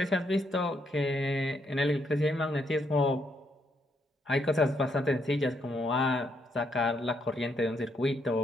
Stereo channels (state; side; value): normal; both; correlation 0.76